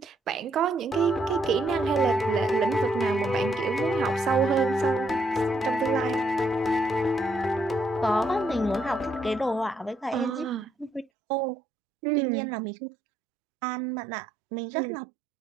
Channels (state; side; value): drops out; left; at 11.1 s